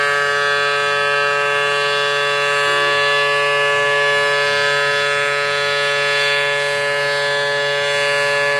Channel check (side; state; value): both; identical; correlation 1.00